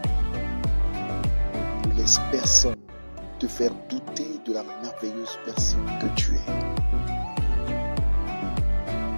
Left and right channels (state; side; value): inverted; both; correlation -1.00